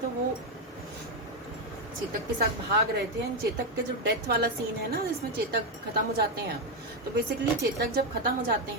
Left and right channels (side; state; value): both; normal; correlation 0.06